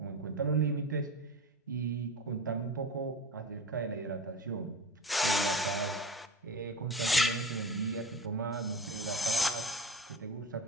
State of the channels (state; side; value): normal; both; correlation 0.31